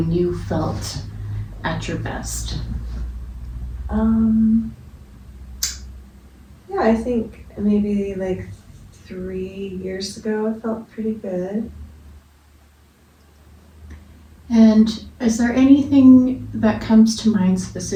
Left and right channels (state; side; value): identical; both; correlation 1.00